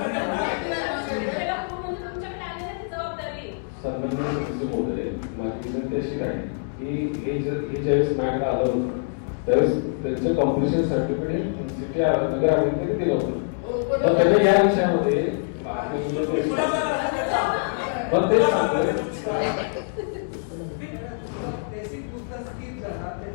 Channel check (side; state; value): right; silent; 62 dB below the other